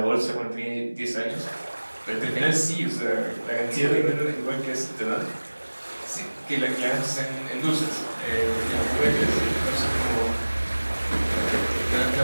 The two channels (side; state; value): both; inverted; correlation -1.00